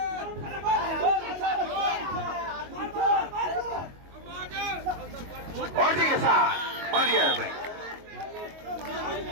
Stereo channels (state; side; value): late; left; 22 ms